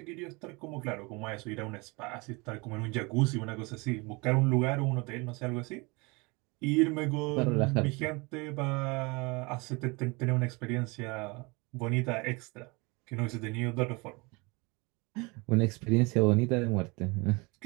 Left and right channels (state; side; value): quieter; left; 27.0 dB